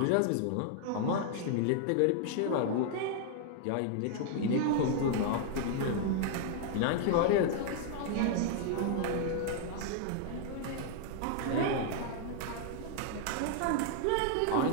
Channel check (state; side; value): different; both; correlation 0.00